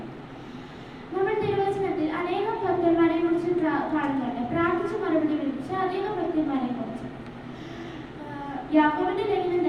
നമ്മൾ തിരുവചനത്തിൽ അനേകം ഭക്തന്മാരെ കുറിച്ച് കാണുന്നുണ്ട്. പ്രാർത്ഥിച്ച് മറുപടി ലഭിച്ച അനേകം ഭക്തന്മാരെ കുറിച്ച്. യാക്കോബിന്റെ ലേഖനം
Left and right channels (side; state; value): both; identical; correlation 1.00